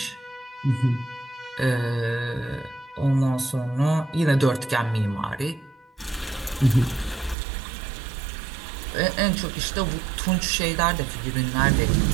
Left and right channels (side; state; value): left; drops out; at 7.4 s